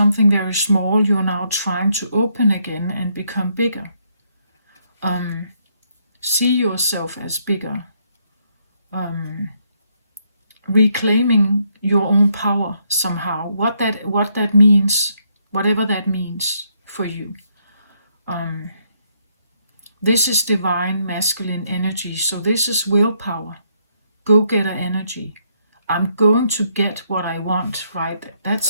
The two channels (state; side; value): inverted; both; correlation -0.74